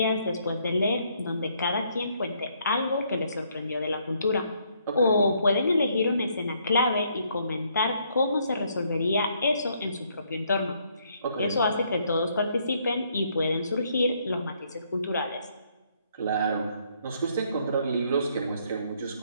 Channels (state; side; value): inverted; both; correlation -0.70